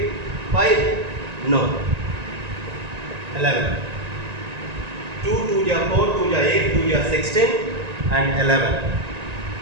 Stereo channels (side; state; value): left; late; 1.9 ms